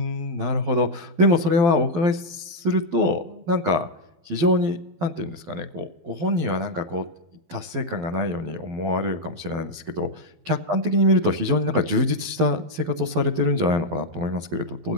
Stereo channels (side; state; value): left; late; 12 ms